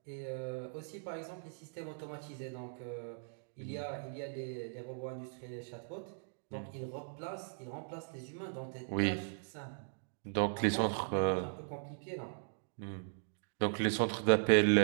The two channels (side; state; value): left; silent; digital silence